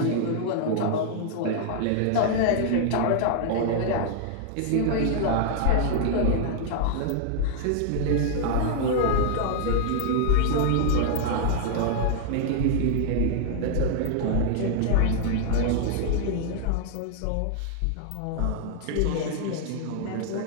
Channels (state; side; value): different; both; correlation -0.01